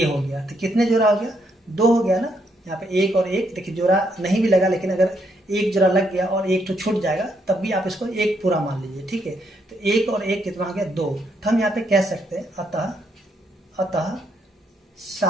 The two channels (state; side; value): normal; both; correlation 0.75